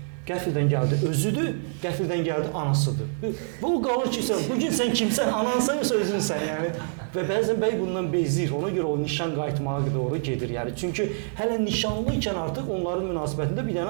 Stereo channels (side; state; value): left; silent; digital silence